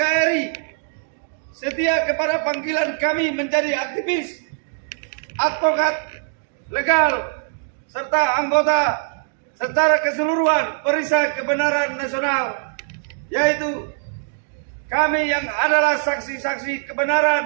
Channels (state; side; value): silent; left; digital silence